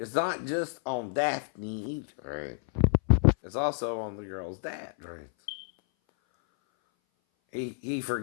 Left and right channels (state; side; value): silent; right; 57 dB below the other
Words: not just on Daphne either, right? It's also on the girl's dad, right? He